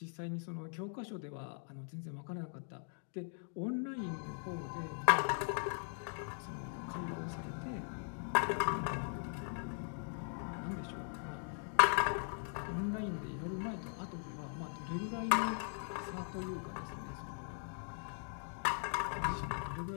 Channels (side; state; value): right; silent; 51 dB below the other